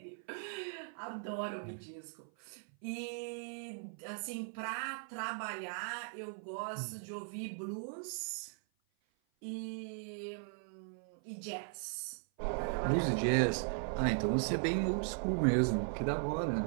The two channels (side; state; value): left; silent; 52 dB below the other